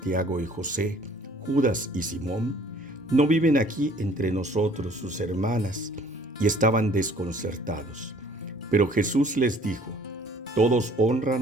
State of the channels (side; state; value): both; normal; correlation 0.55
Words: y José, Judas y Simón? ¿No viven aquí entre nosotros sus hermanas? Y estaban desconcertados. Pero Jesús les dijo: todos